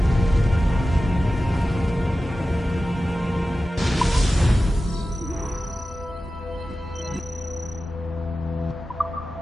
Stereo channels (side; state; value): both; normal; correlation 0.94